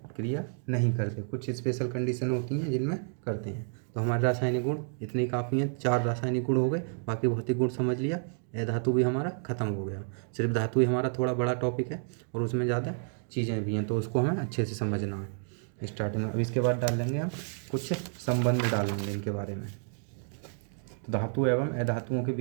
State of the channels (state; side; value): silent; left; 58 dB below the other